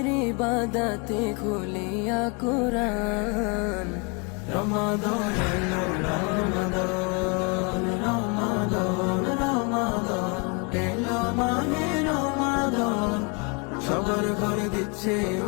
ইবাদতে খুলিয়া কুরআন। রমাদান এলো রমাদান, রমাদান রমাদান এলো মাহে রমাদান। সবার ঘরে দিচ্ছে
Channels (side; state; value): right; quieter; 32.1 dB